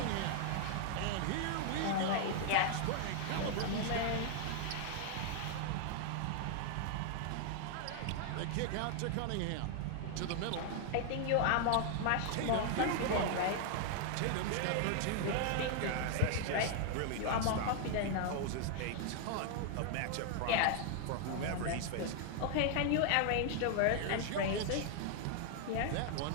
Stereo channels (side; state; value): both; different; correlation 0.00